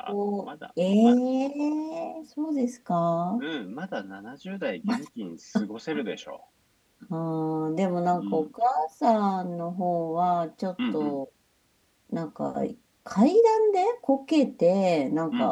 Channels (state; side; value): identical; both; correlation 1.00